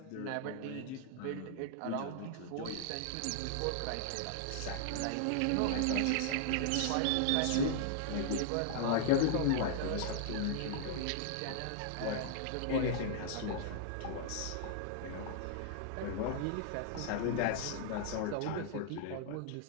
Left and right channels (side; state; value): both; different; correlation -0.01